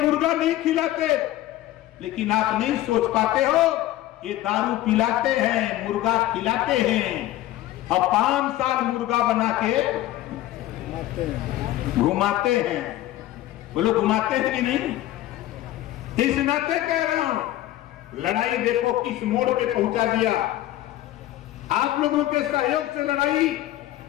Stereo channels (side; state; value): right; quieter; 14.8 dB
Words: नहीं खिलाते। लेकिन आप नहीं सोच पाते हो, ये दारू पिलाते हैं, मुर्गा खिलाते हैं और 5 साल मुर्गा बना के घुमाते हैं। बोलो घुमाते हैं कि नहीं? इस नाते कह रहा हूं, लड़ाई देखो किस मोड़ पे पहुंचा दिया। आप लोगों के सहयोग से लड़ाई